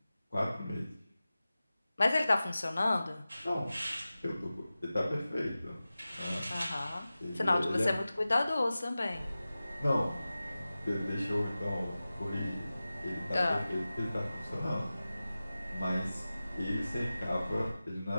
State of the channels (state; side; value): inverted; both; correlation -0.96